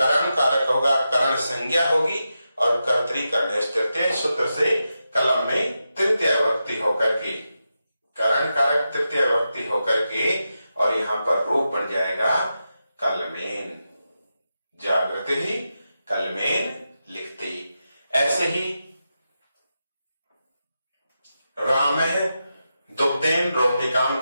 कारक होगा, करण संज्ञा होगी, और कर्तरी कर्णयोस् तृतीय सूत्र से कलम में तृतीय विभक्ति होकर के, करण कारक तृतीय विभक्ति होकर के, और यहां पर रूप बन जाएगा कलमेन, जागृति ही कलमेन लिखती। ऐसे ही रामः दुग्धेन रोटिकां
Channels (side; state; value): both; inverted; correlation -0.89